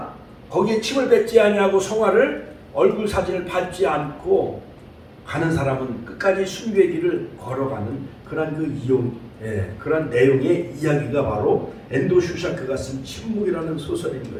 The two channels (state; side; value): identical; both; correlation 1.00